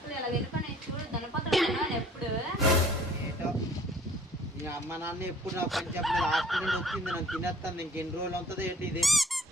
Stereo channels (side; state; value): both; normal; correlation 0.54